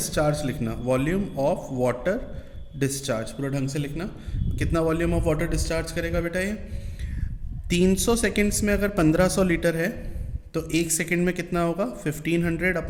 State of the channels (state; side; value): identical; both; correlation 1.00